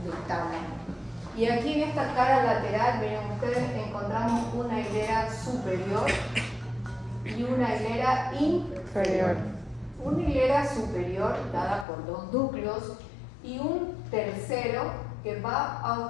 del tálamo. Y aquí en esta cara lateral, miren ustedes, encontramos una hilera superior y una hilera inferior. Una hilera superior dada por dos núcleos y un tercero que va a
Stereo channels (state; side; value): drops out; right; at 11.9 s